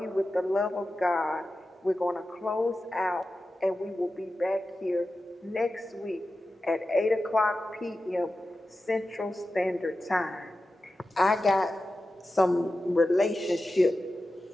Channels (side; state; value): both; normal; correlation 0.93